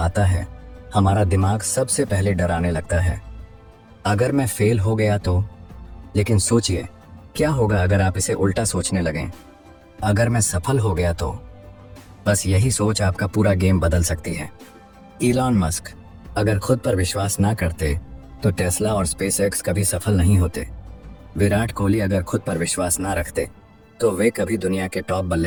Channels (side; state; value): both; identical; correlation 1.00